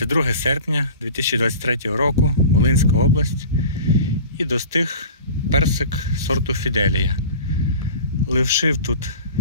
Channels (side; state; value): both; inverted; correlation -0.38